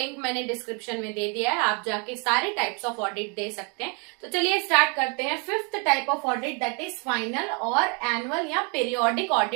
मैंने डिस्क्रिप्शन में दे दिया है, आप जाके सारे टाइप्स ऑफ ऑडिट दे सकते हैं। तो चलिए स्टार्ट करते हैं। 5th type of audit, that is final और एनुअल या पीरियोडिक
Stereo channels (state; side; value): quieter; left; 34.9 dB